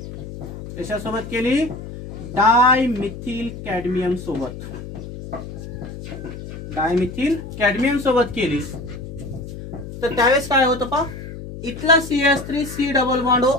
कशासोबत केली, डायमिथिल कॅडमियम सोबत, डायमिथिल कॅडमियम सोबत केली तर त्यावेळेस काय होतं पा, इथला CH3 डबल बॉन्ड O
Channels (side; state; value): left; noise; hum, 11 dB below the sound